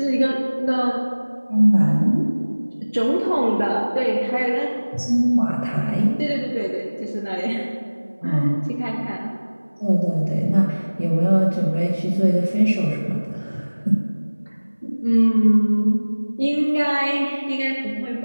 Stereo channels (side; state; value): both; inverted; correlation -1.00